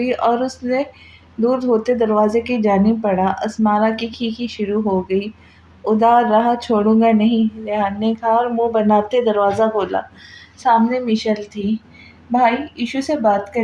اور اس نے دودھ ہوتے دروازے کی جانب بڑھا۔ اسمارا کی کھیکھی شروع ہو گئی۔ ادھر راہ چھوڑوں گا نہیں، ریحان نے کہا اور منہ بناتے دروازہ کھولا۔ سامنے میشل تھی۔ بھائی، ایشو سے بات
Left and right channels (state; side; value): identical; both; correlation 1.00